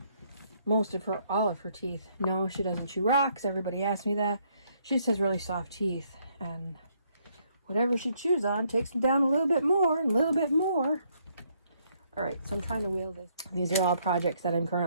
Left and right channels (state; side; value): inverted; both; correlation -0.70